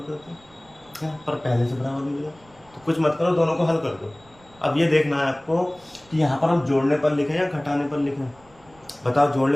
करते क्या, पर पहले से बराबर मिल गया। तो कुछ मत करो, दोनों को हल कर दो। अब ये देखना है आपको कि यहाँ पर हम जोड़ने पर लिखें या घटाने पर लिखें। बताओ,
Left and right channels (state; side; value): noise; right; rumble, 28 dB below the sound